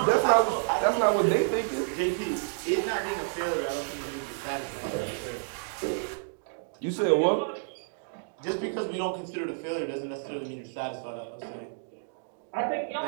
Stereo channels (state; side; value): silent; left; digital silence